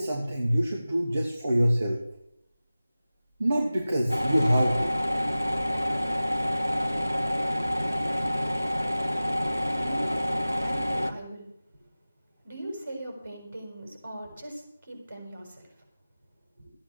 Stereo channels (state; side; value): inverted; both; correlation -0.97